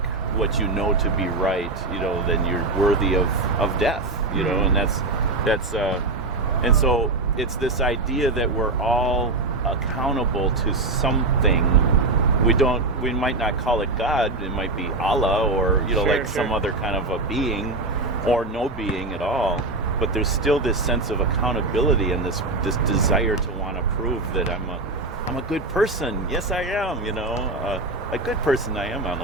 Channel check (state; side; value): quieter; left; 3.1 dB